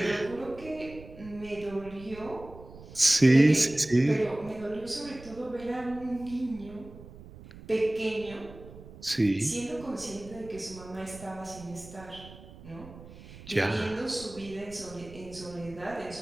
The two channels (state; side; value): noise; right; rumble, 17 dB below the sound